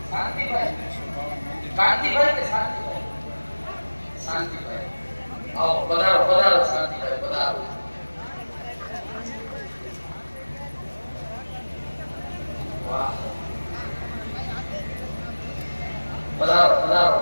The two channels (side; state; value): both; inverted; correlation -1.00